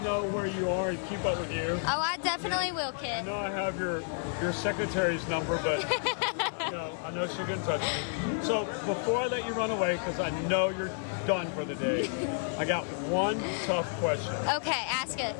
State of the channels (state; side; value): silent; right; 57 dB below the other